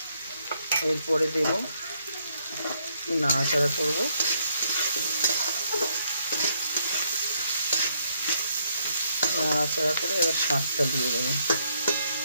এরপরে দেব, নাড়াচাড়া করবো। নাড়াচাড়া করে এবার শাকটা দিয়ে দেবো।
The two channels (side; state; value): both; inverted; correlation -0.73